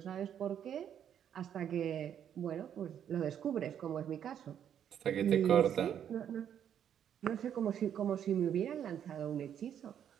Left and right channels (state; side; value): quieter; left; 9.3 dB